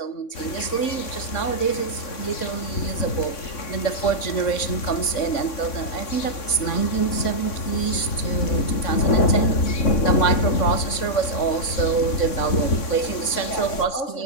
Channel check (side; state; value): right; late; 3.6 ms